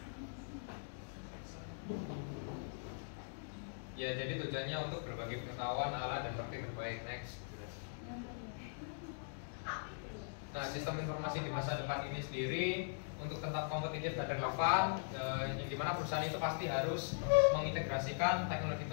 Ya, jadi tujuannya untuk berbagi pengetahuan, alat, dan praktik terbaik. Next. Nah, sistem informasi di masa depan ini sendiri untuk tetap kompetitif dan relevan, yang dimana perusahaan itu pasti harus mengintegrasikan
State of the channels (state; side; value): silent; right; digital silence